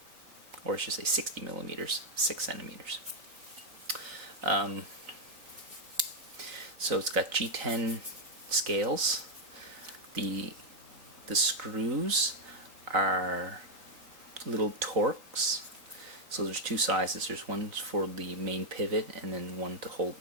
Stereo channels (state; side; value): late; left; 3.9 ms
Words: Or I should say 60 millimeters, 6 centimeters. So it's got G10 scales. The screws are little Torx. So there's two sizes. There's one for the main pivot, and then one to hold,